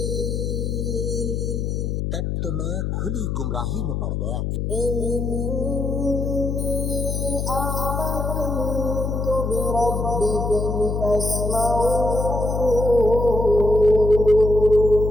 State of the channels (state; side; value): noise; left; hum, 1 dB below the sound